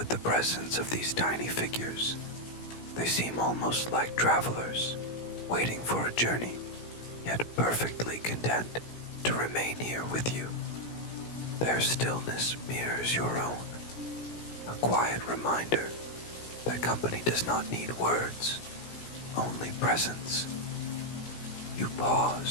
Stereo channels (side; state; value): right; late; 17 ms